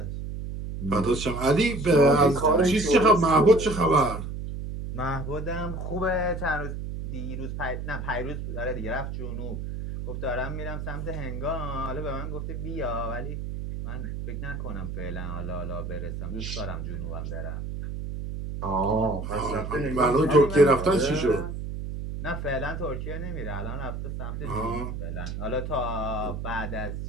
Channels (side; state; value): right; noise; hum, 6 dB below the sound